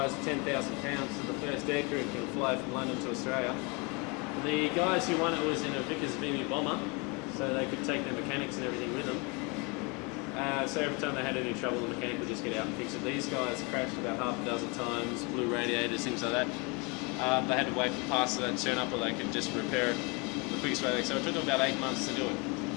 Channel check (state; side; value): quieter; right; 30.1 dB